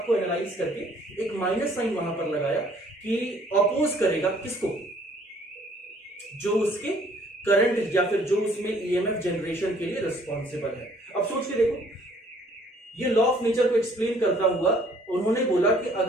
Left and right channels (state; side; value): normal; both; correlation 0.59